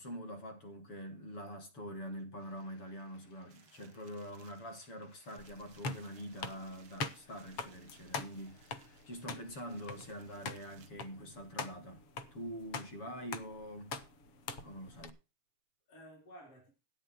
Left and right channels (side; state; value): right; late; 7.2 ms